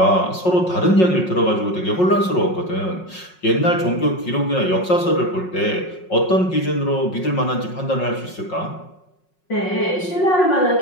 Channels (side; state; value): right; late; 5.5 ms